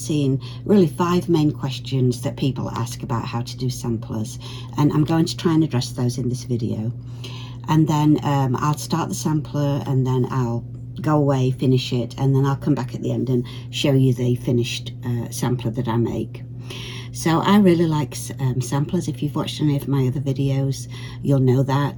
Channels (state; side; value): identical; both; correlation 1.00